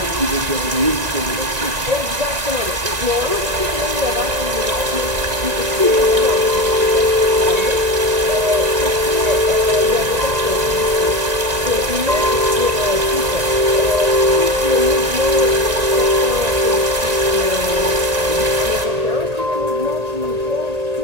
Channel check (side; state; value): left; late; 1.9 ms